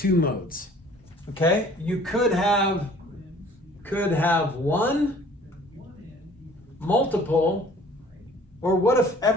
modes. Okay? You could have 1, multiple, or what if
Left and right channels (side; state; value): both; normal; correlation 0.52